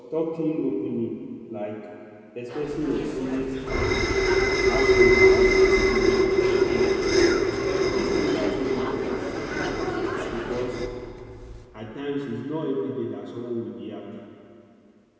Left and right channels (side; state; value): both; identical; correlation 1.00